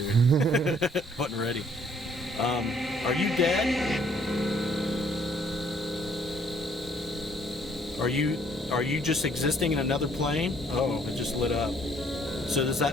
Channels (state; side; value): normal; both; correlation 0.63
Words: Wasn't ready. Are you dead? Are you just existing in another plane? Oh, it just lit up. So does